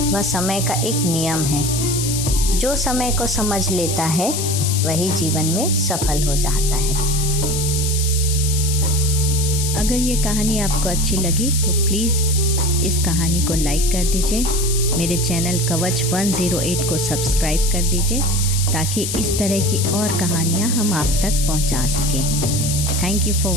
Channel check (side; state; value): left; noise; hiss, 3 dB below the sound